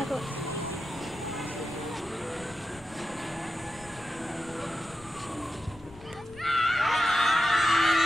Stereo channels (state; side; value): noise; left; rumble, 21 dB below the sound